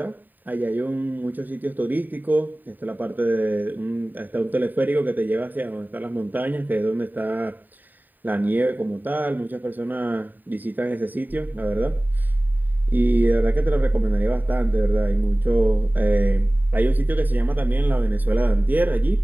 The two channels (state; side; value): late; left; 0.089 ms